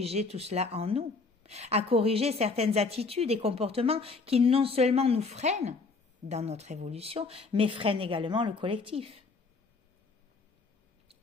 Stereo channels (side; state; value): right; quieter; 4.1 dB